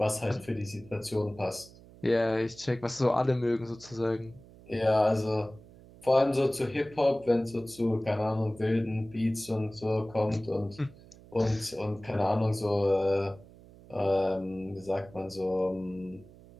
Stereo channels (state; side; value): noise; right; hum, 22 dB below the sound